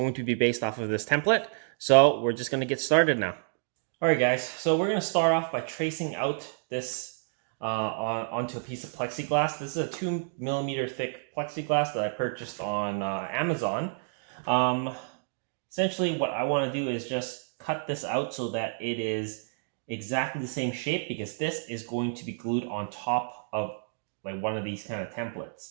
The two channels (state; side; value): silent; left; digital silence